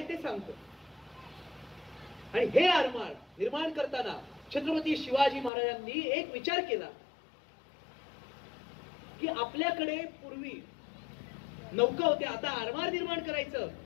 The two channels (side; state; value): right; drops out; at 5.5 s